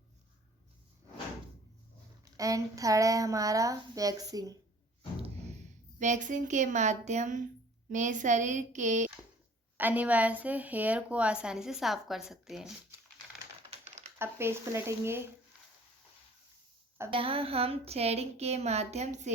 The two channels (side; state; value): both; normal; correlation 0.51